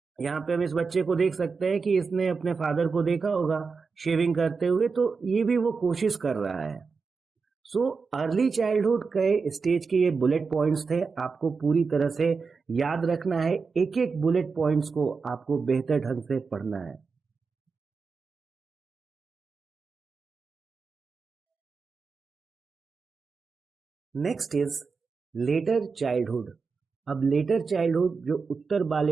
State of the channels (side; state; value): left; quieter; 4.9 dB